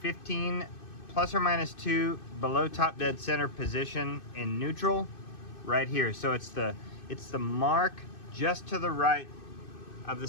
15 plus or minus 2 below top dead center position in neutral right here. So it's the mark just to the right of the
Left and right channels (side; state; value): right; late; 2.6 ms